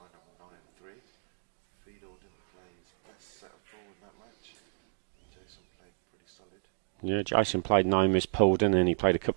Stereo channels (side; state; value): left; silent; digital silence